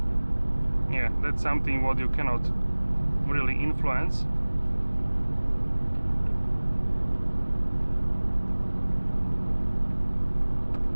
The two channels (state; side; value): inverted; both; correlation -1.00